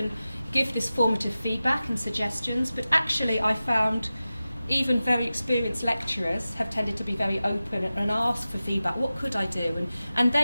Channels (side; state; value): both; inverted; correlation -0.95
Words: give this formative feedback and suggestions, but actually I found even very experienced lecturers have tended to be very open and ask for feedback. What could I do? And